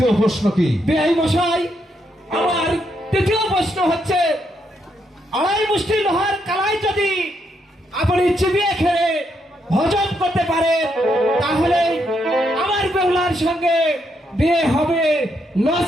প্রশ্ন কি? বেআই মশাই, আমার তৃতীয় প্রশ্ন হচ্ছে, আড়াই মুষ্টি লোহার কালাই যদি আপনি চিবিয়ে খেয়ে হজম করতে পারেন তাহলে আমার বেহুলার সঙ্গে বিয়ে হবে,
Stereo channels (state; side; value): normal; both; correlation 0.78